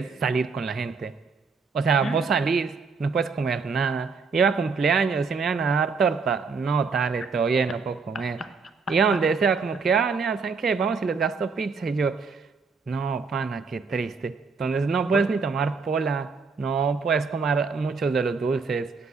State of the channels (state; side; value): quieter; left; 4.9 dB